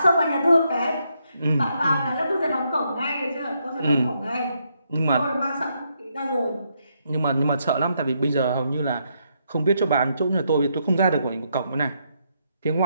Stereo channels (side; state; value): both; inverted; correlation -0.77